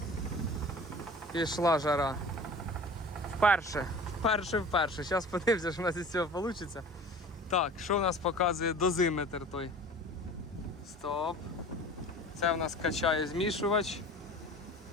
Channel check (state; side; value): normal; both; correlation 0.41